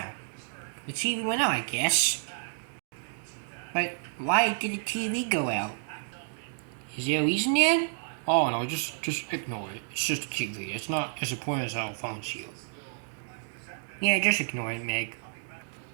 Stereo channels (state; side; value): silent; left; digital silence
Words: The TV went out, I guess. But why did the TV go out? Is there a reason yet? Oh no, just ignore it. It's just a TV. It's not as important as our phones to you. Yeah, just ignore it, Meg.